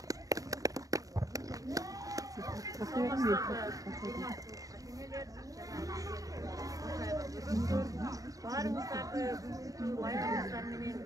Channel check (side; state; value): left; late; 0.17 ms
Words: Barыңыздарды бүгүнкү байрамыңыздар менен